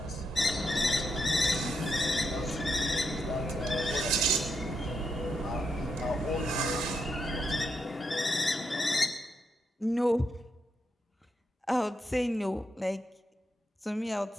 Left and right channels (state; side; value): normal; both; correlation 0.82